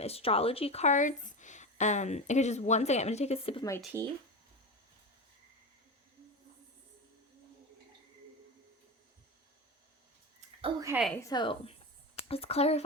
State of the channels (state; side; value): normal; both; correlation 0.21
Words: cards. Okay, just one second. I'm going to take a sip of my tea. Okay, so let's